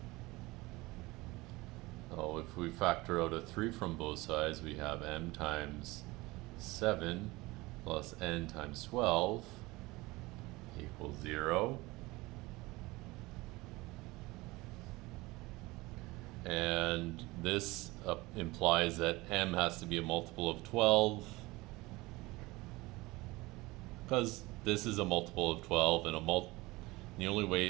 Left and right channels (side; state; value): left; quieter; 21.5 dB